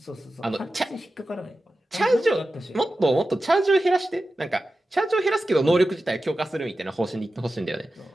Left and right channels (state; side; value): normal; both; correlation 0.93